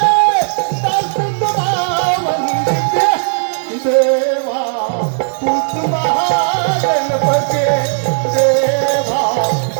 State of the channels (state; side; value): silent; left; digital silence